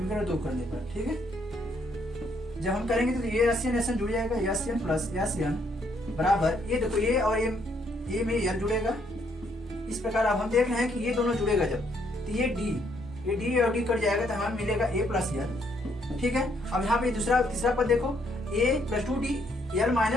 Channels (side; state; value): both; normal; correlation 0.70